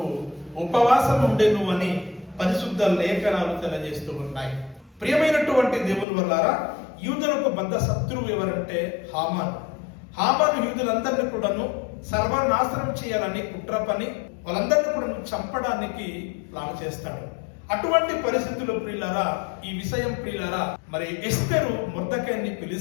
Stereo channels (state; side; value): drops out; right; at 6.1 s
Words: ఉపవాసం ఉండేను అని పరిశుద్ధ లేఖనాలు తెలియజేస్తూ ఉన్నాయి. ప్రియమైనటువంటి దేవుని వల్లరా యూదులకు బద్ద శత్రువు ఎవరంటే హామాను యూదులందరినీ కూడాను సర్వనాశనం చేయాలని కుట్ర పని వాళ్ళందరినీ కూడా చంపడానికి ప్లాన్ చేస్తాడు. అటువంటి పరిస్థితుల్లో ప్రియులారా ఈ విషయం ప్రియులారా మరి ఎస్తేరు మొర్దెకైని